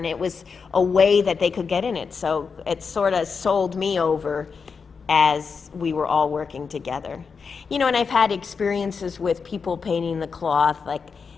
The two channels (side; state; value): right; quieter; 5.5 dB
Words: it was a way that they could get in it. So it sort of sold me over as we were all working together. And I've had experiences with people painting the cloth, like